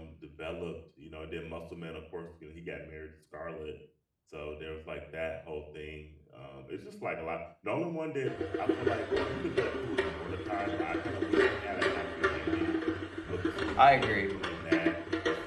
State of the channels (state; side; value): identical; both; correlation 1.00